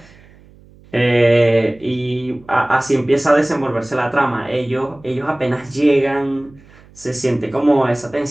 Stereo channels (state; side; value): noise; right; hum, 26 dB below the sound